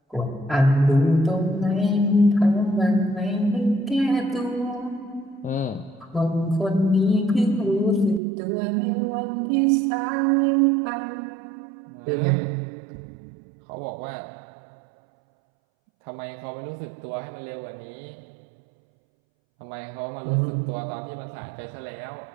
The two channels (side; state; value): left; drops out; at 8.2 s